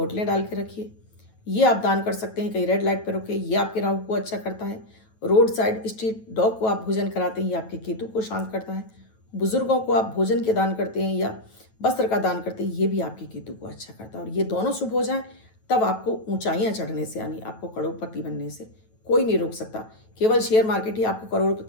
डाल के रखिए, ये आप दान कर सकते हैं। कहीं रेड लाइट पर रुके, ये आपके राहु को अच्छा करता है। रोड साइड स्ट्रीट डॉग को आप भोजन कराते हैं, ये आपके केतु को शांत करता है। बुजुर्गों को आप भोजन के दान करते हैं या वस्त्र का दान करते हैं, ये भी आपके केतु को अच्छा करता है। और ये दोनों शुभ हो जाएं तब आपको ऊंचाइयां चढ़ने से, यानी आपको करोड़पति बनने से कोई नहीं रोक सकता। केवल शेयर मार्केट ही आपको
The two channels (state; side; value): late; right; 9.2 ms